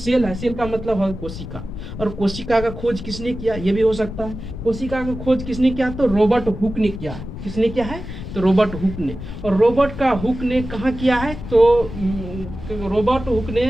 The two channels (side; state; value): left; noise; rumble, 10 dB below the sound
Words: है, सेल का मतलब है कोशिका। और कोशिका का खोज किसने किया, ये भी हो सकता है। कोशिका का खोज किसने किया, तो रॉबर्ट हुक ने किया है। किसने किया है, तो रॉबर्ट हुक ने। और रॉबर्ट का हुक ने कहाँ किया है, तो रॉबर्ट हुक